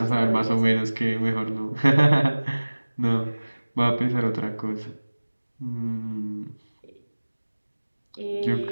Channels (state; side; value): inverted; both; correlation -1.00